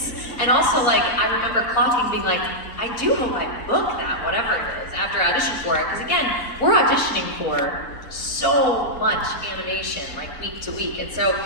And also, I remember clocking being like, I do hope I book that, whatever it is, after I auditioned for it. Because again, we're auditioning for so much animation, week to week. And so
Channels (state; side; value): late; right; 4.5 ms